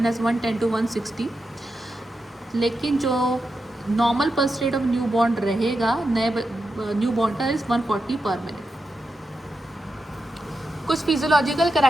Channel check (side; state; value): both; normal; correlation 0.88